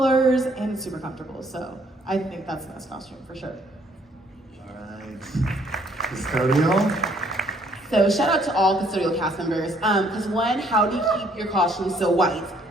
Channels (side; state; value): both; normal; correlation 0.64